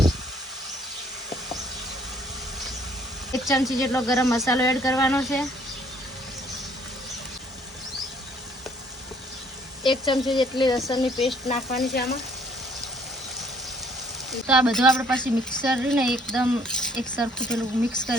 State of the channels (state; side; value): normal; both; correlation 0.62